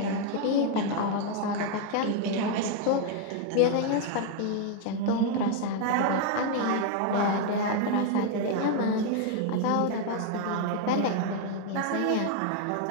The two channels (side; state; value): both; different; correlation 0.01